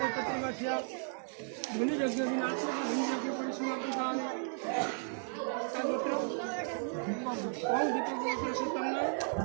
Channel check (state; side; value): silent; left; 55 dB below the other